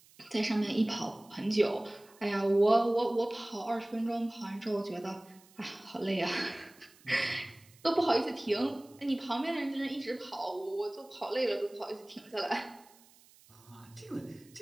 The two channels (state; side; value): noise; right; hiss, 27 dB below the sound